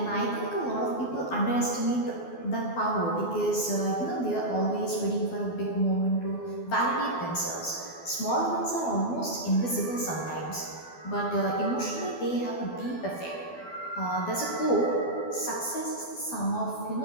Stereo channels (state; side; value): late; right; 12 ms